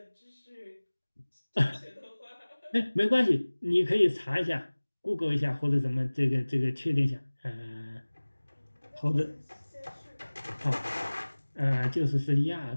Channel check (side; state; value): both; inverted; correlation -1.00